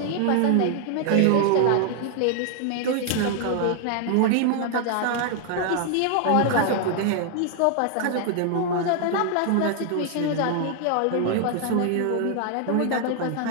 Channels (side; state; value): both; different; correlation 0.00